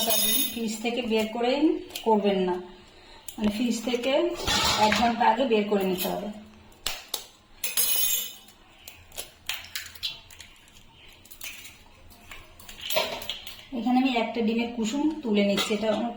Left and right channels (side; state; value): both; identical; correlation 1.00